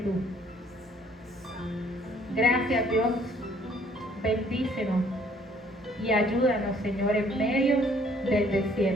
Gracias, Dios. Bendícenos y ayúdanos, Señor, en medio del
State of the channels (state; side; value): normal; both; correlation 0.61